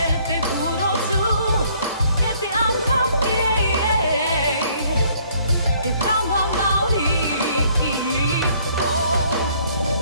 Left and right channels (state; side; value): inverted; both; correlation -0.62